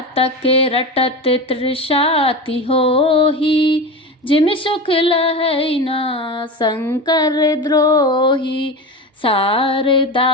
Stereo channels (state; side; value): normal; both; correlation 0.24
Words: रटत तृषाति होही, जिमि सुख लहै न शंकर द्रोही,